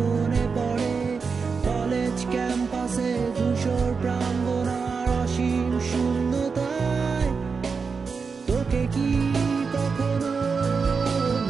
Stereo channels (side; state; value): left; quieter; 5.2 dB